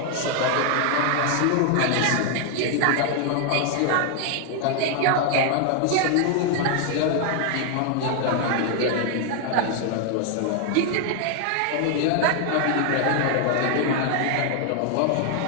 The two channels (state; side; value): different; both; correlation 0.00